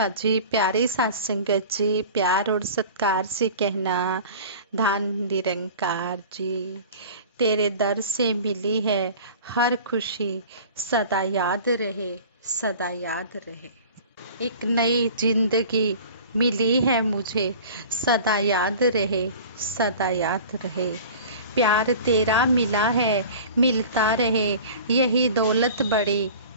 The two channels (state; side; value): inverted; both; correlation -0.41